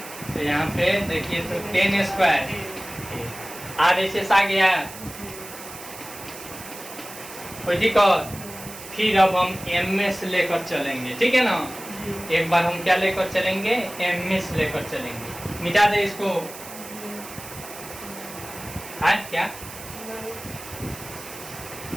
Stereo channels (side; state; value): right; noise; hiss, 14 dB below the sound